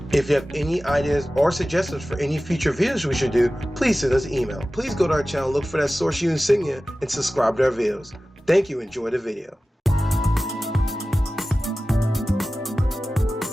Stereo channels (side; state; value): both; normal; correlation 0.96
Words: If you have any ideas or suggestions for any future videos we should do, please send us an email. Please go to our channel, look for that Source U insignia, and subscribe to our videos. Thank you, enjoy the video.